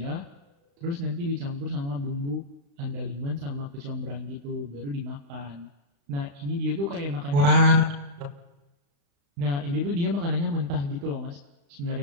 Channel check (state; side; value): late; left; 35 ms